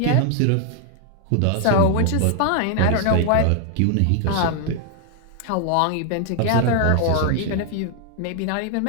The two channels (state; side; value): different; both; correlation 0.00